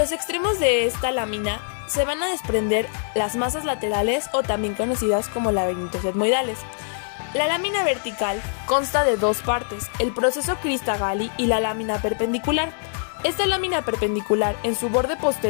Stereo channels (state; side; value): silent; right; digital silence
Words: extremos de esta lámina se van a desprender las masas laterales o también conocidas como laberintos etmoidales. La lámina vertical consta de dos partes, el proceso Crista-Galli y la lámina perpendicular. Esta lámina perpendicular en su borde